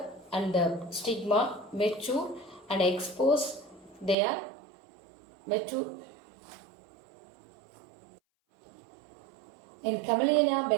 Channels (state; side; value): drops out; left; at 4.2 s